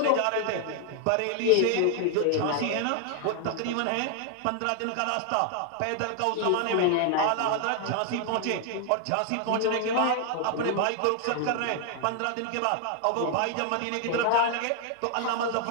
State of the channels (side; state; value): both; different; correlation 0.00